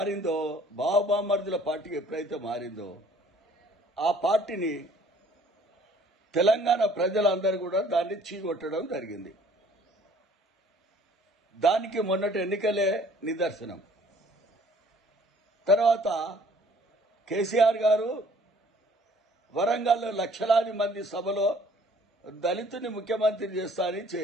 బావబామర్దుల పార్టీ ఎప్పుడైతే మారిందో, ఆ పార్టీని తెలంగాణ ప్రజలందరూ కూడా దాన్ని చీకొట్టడం జరిగింది. దానికి మొన్నటి ఎన్నికలే నిదర్శనం. తర్వాత కేసీఆర్ గారు వరంగల్లో లక్షలాది మంది సభలో దళితుని ముఖ్యమంత్రి చేస్తా అని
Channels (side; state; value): both; normal; correlation 0.56